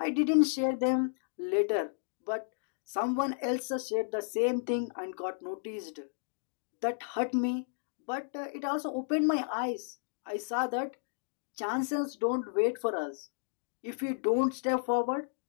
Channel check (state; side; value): silent; right; digital silence